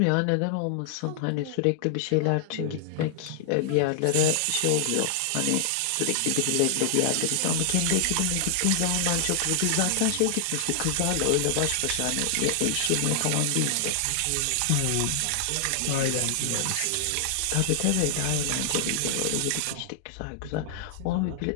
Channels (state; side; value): different; both; correlation 0.00